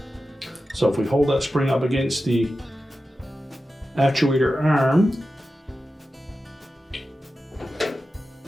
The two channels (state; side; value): normal; both; correlation 0.93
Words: So if we hold that spring up against the actuator arm,